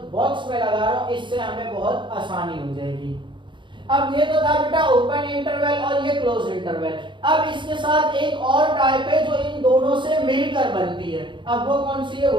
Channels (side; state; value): left; late; 0.23 ms